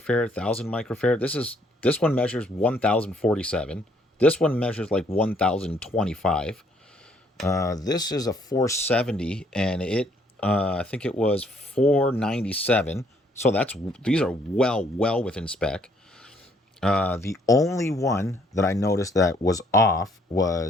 1,000 microfarad. This one measures 1,047. This one measures like 1,025. This is a 470, and it I think it was 497. So these are well within spec. The only one that I noticed that was off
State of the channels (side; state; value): both; normal; correlation 0.66